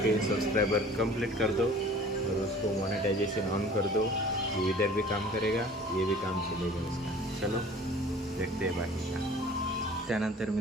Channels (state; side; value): normal; both; correlation 0.47